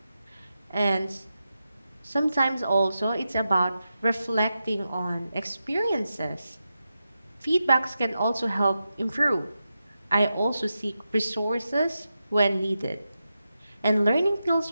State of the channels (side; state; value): both; inverted; correlation -0.90